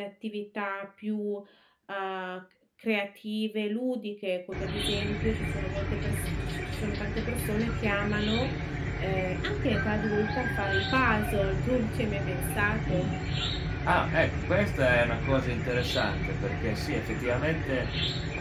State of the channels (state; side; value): identical; both; correlation 1.00